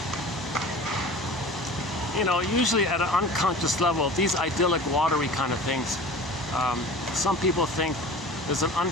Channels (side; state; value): both; normal; correlation 0.39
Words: you know, usually at an unconscious level, these idyllic, watery kind of things, some people think there's an